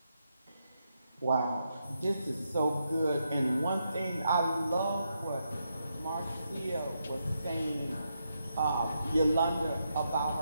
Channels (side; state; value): both; inverted; correlation -0.82